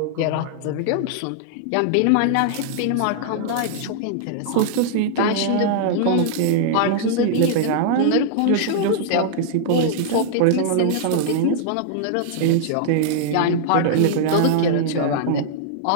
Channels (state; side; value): different; both; correlation -0.01